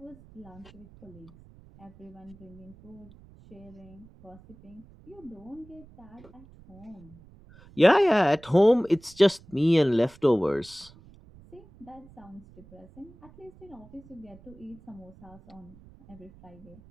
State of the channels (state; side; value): noise; right; rumble, 23 dB below the sound